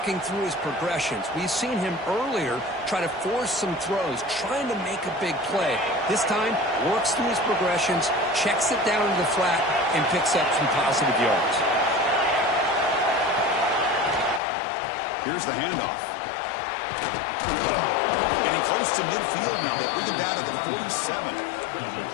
through his progressions. We've seen him earlier try to force some throws, trying to make a big play. This time, works through his progressions, checks it down to the flat, and picks up some positive yards. Here's the handoff. Getting close to midfield now. They bring him down to the 47.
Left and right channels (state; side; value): drops out; right; at 14.4 s